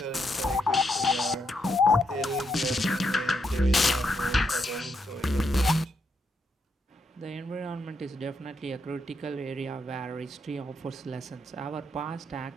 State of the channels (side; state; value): both; normal; correlation 0.80